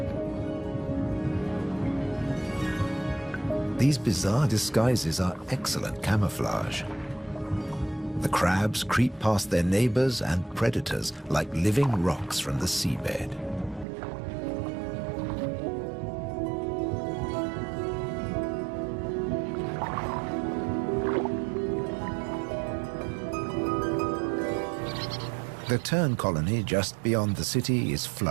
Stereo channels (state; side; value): drops out; left; at 13.9 s